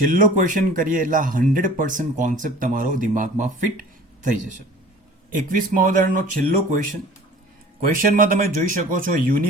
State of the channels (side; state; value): both; normal; correlation 0.45